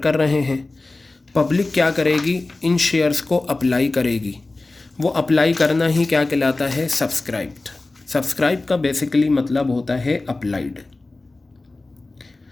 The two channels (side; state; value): right; quieter; 3.2 dB